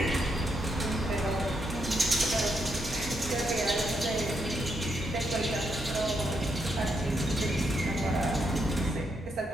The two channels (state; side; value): normal; both; correlation 0.79